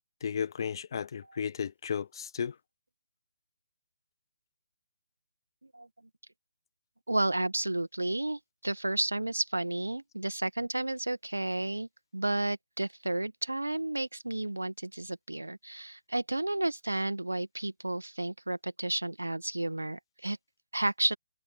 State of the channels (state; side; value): inverted; both; correlation -0.94